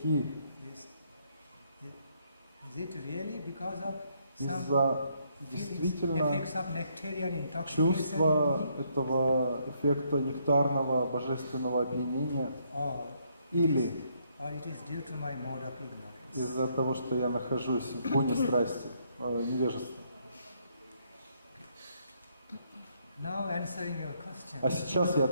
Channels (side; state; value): both; inverted; correlation -0.72